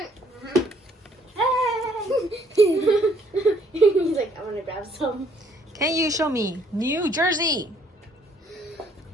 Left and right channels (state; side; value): normal; both; correlation 0.64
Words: He's like, I want to grab some. Can you show me New Jersey?